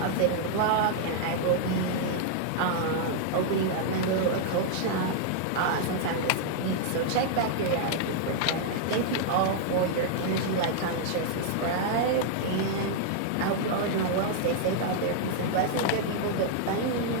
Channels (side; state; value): both; different; correlation -0.01